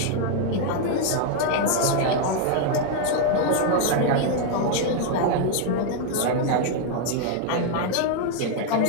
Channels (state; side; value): different; both; correlation 0.00